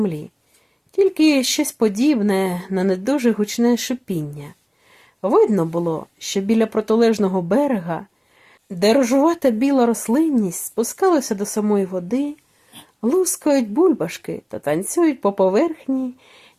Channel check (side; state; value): both; identical; correlation 1.00